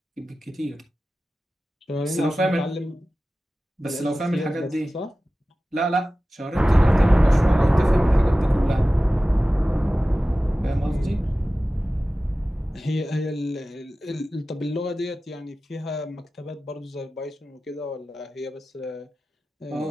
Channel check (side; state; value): both; normal; correlation 0.95